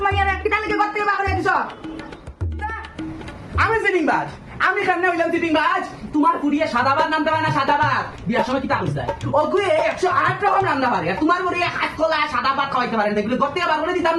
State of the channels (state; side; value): identical; both; correlation 1.00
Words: মাইয়ার কিটা লাগে করতে বা করে দিছ আমি সিটিং বাজ আমি কেমনে হইলাম সিটিং বাজ তোমার পুরিয়ে সাদাবাদ নামতে পারে না সাদাবাদ বিয়ার সময় কি তাকুস দেয় ওগুলো 108 রকম রান্না পারে আর তোমার পুরিয়ে হাত কলা সাদাবাদ খাওয়াইতে পারেন এগুলো করতে বার করে দিতাম